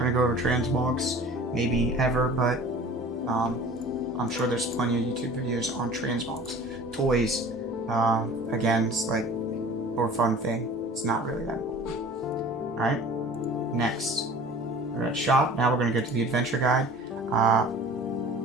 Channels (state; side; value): normal; both; correlation 0.43